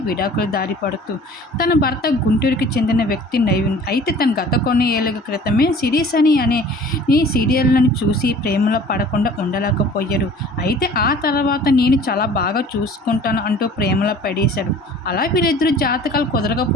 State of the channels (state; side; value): normal; both; correlation 0.47